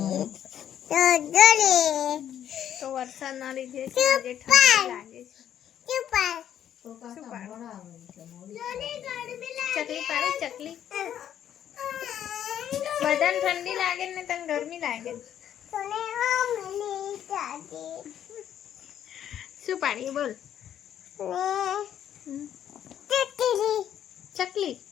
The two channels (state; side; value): quieter; right; 10.2 dB